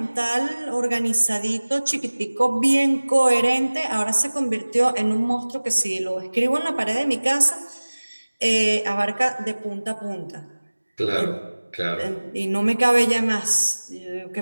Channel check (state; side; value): inverted; both; correlation -1.00